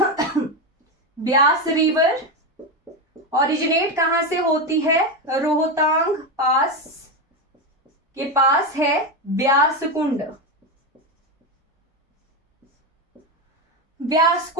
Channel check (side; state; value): both; normal; correlation 0.13